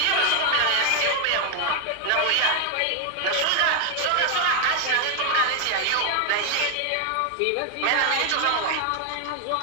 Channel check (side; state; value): both; different; correlation 0.01